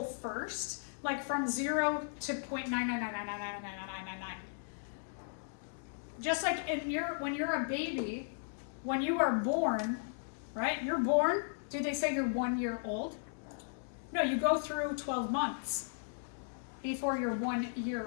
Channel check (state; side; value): silent; right; digital silence